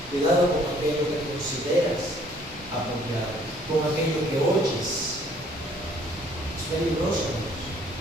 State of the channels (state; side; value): normal; both; correlation 0.60